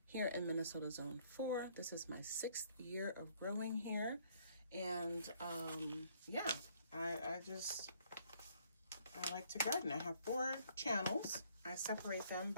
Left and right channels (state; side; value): inverted; both; correlation -0.64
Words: here in Minnesota Zone 4. This is my 6th year of growing here. And yeah, I like to garden. I have 4 channels. I separate them